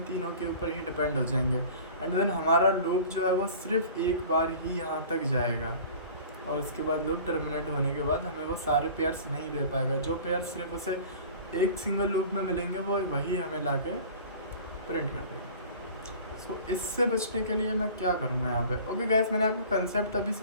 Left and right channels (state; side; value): inverted; both; correlation -0.43